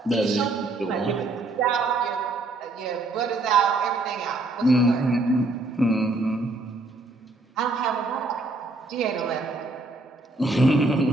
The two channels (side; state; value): left; quieter; 3.1 dB